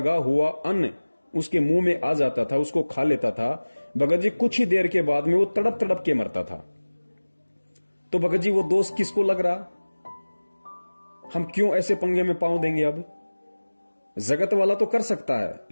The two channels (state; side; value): inverted; both; correlation -1.00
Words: हुआ अन्न उसके मुंह में आ जाता था, उसको खा लेता था, भगत जी कुछ ही देर के बाद में वो तड़प तड़प के मरता था। तो भगत जी वो दोष किसको लग रहा? हम क्यों ऐसे पंगे में पांव देंगे? अब जगत वाला तो कर सकता है,